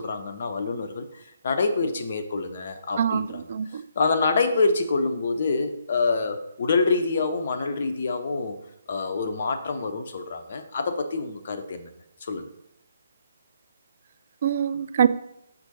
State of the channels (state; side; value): inverted; both; correlation -0.73